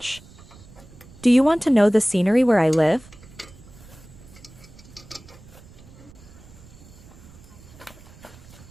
Do you want to know the scenery where I live?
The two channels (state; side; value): noise; right; rumble, 21 dB below the sound